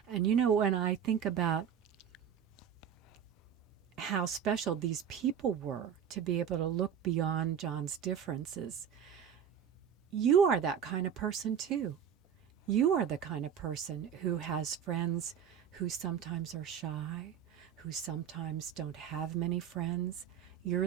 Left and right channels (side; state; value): left; quieter; 8.4 dB